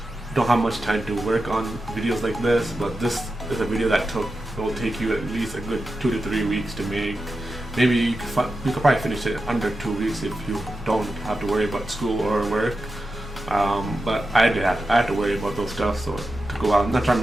don't have much time to work on videos like this. But this is a video that will take you at least a good 2 to 3 weeks to make. Maybe you could probably finish it under 2 weeks if you don't have to worry about school or work. But I had to worry about those stuff, so to go out. I'm not trying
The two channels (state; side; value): normal; both; correlation 0.91